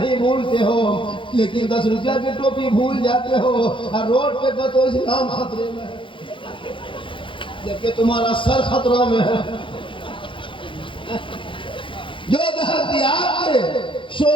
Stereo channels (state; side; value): late; right; 0.25 ms